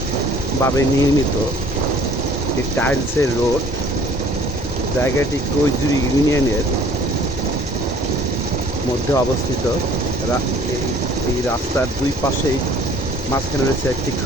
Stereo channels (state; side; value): normal; both; correlation 0.54